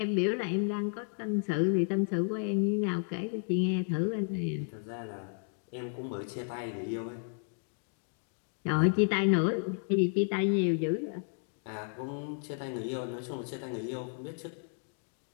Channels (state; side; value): silent; right; 56 dB below the other